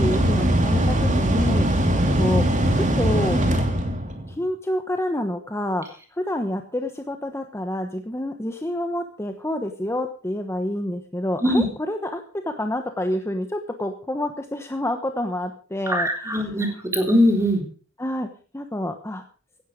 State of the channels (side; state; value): both; normal; correlation 0.77